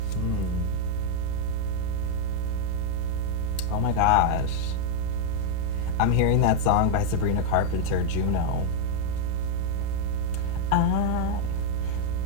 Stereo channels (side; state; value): both; different; correlation -0.01